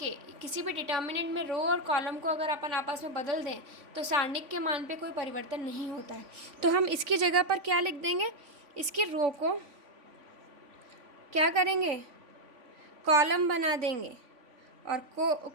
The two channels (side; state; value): left; late; 3.5 ms